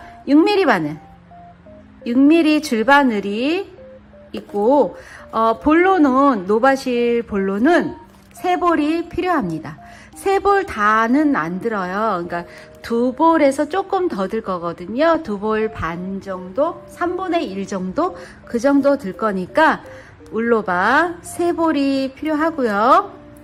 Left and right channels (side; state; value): both; identical; correlation 1.00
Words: 6mm 바늘, 6mm 줄바늘이 있고, 볼로는, 노바실 볼로는 3볼이 필요합니다. 3볼 다는 안 들어요. 그러니까 2볼에서 조금 더 들 거거든요. 2볼 반 정도, 3분의 1 정도, 그 정도 들 거니까 울로바 3볼이 필요하고요.